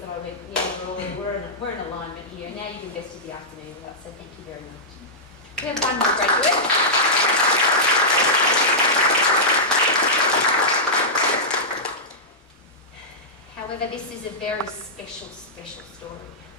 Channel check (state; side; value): normal; both; correlation -0.12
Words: that I went, yeah, we're in alignment here. Now you've invested the afternoon with us, so thank you very much. We have one more graduate. However, this is a very special story.